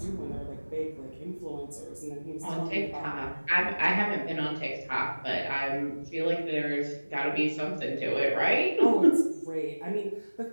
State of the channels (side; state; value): both; inverted; correlation -1.00